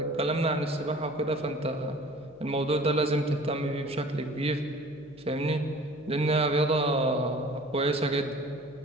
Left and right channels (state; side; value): noise; left; hum, 28 dB below the sound